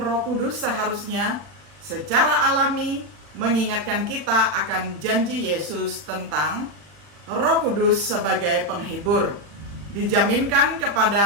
Kudus seharusnya secara alami mengingatkan kita akan janji Yesus tentang Roh Kudus sebagai penghibur. Dijaminkan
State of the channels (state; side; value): late; left; 40 ms